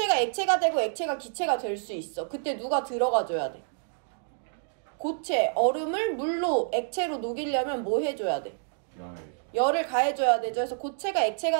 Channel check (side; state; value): left; silent; digital silence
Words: 액체가 되고 액체가 기체가 될 수 있어. 그때 누가 들어가줘야 돼? 고체, 얼음을 물로, 액체로 녹이려면 뭐 해줘야 돼? 열을 가해줘야 되죠. 그래서 고체가